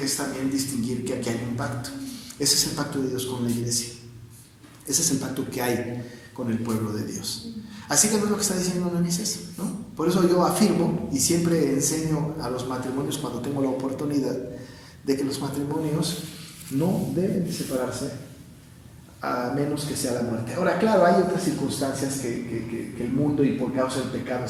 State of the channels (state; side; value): identical; both; correlation 1.00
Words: es también distinguir que aquí hay un pacto. Ese es el pacto de Dios con la iglesia. Ese es el pacto que hay con el pueblo de Dios. Así que no es lo que está diciendo Moisés, ¿no? Por eso yo afirmo y siempre enseño a los matrimonios cuando tengo la oportunidad de que los matrimonios no deben separarse a menos que sea la muerte. Ahora, claro, hay otras circunstancias que el mundo y por causa del pecado